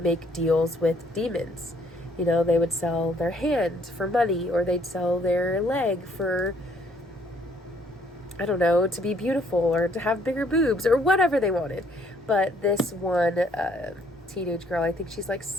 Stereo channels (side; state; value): both; normal; correlation 0.64